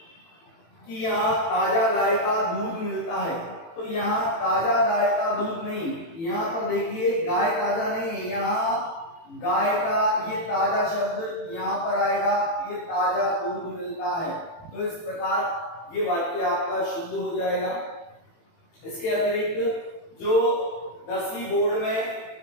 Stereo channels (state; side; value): late; right; 18 ms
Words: कि यहाँ ताजा गाय का दूध मिलता है, तो यहाँ ताजा गाय का दूध नहीं, यहाँ पर देखिए गाय ताजा नहीं, यहाँ गाय का ये ताजा शब्द यहाँ पर आएगा, ये ताजा दूध मिलता है। तो इस प्रकार ये वाक्य आपका शुद्ध हो जाएगा। इसके अतिरिक्त जो 10वीं बोर्ड में